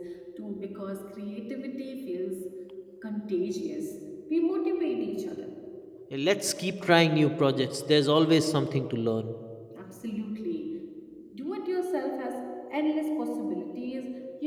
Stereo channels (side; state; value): both; identical; correlation 1.00